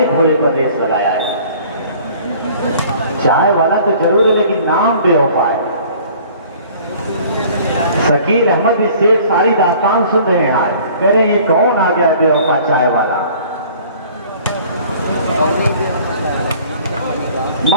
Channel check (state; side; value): inverted; both; correlation -0.51